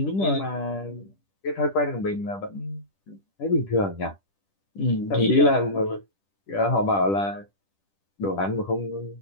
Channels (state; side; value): late; right; 10 ms